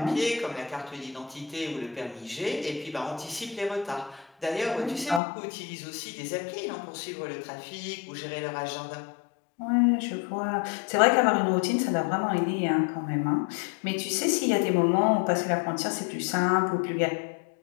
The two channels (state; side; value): drops out; right; at 5.2 s